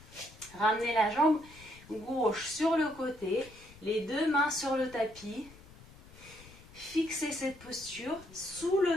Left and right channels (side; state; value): left; noise; rumble, 21 dB below the sound